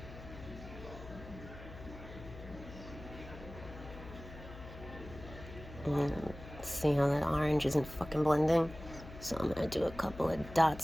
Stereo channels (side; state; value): left; noise; hum, 14 dB below the sound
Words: And see how that orange isn't fucking blending? So I'm gonna do a couple of